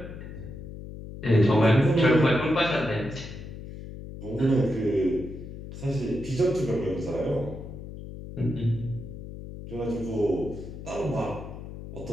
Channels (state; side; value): noise; left; hum, 11 dB below the sound